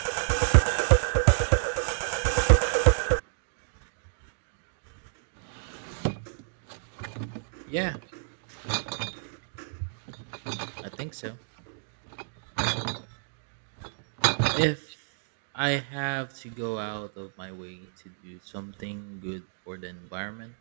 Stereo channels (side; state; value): left; silent; digital silence